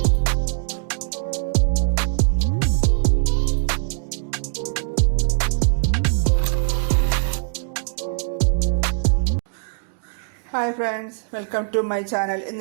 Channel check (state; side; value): silent; left; digital silence